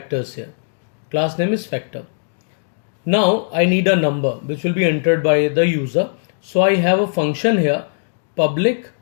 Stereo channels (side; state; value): right; silent; digital silence